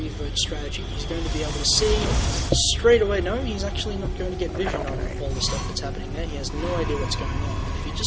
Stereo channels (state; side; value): identical; both; correlation 1.00